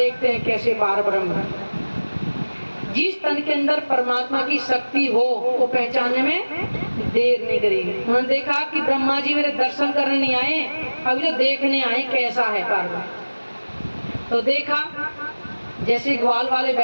हैं कैसे पार ब्रह्म। जिस तन के अंदर परमात्मा की शक्ति हो वो पहचानने में देर नहीं करेगी। उन्होंने देखा कि ब्रह्मा जी मेरे दर्शन करने नहीं आए, अभी तो देखने आए कैसा है पार ब्रह्म। तो देखा जैसे ग्वाल वाले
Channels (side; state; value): both; inverted; correlation -1.00